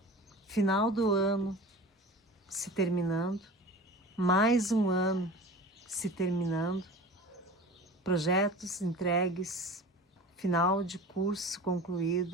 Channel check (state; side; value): normal; both; correlation 0.36